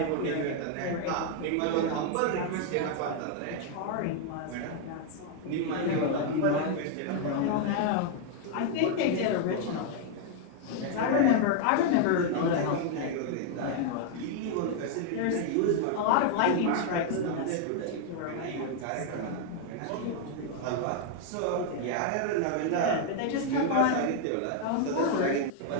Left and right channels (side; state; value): both; different; correlation 0.00